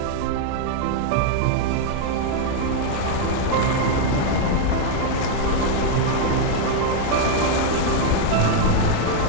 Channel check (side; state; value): both; different; correlation 0.00